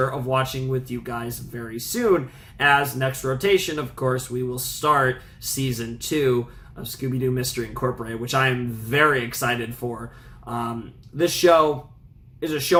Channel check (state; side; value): identical; both; correlation 1.00